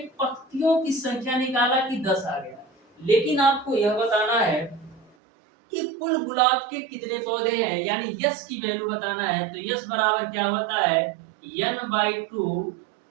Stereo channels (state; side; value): drops out; left; at 5.1 s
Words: पंक्तियों की संख्या निकाला कि 10 आ गया, लेकिन आपको यह बताना है कि कुल गुलाब के कितने पौधे हैं, यानी यस की वैल्यू बताना है। तो यस बराबर क्या होता है n/2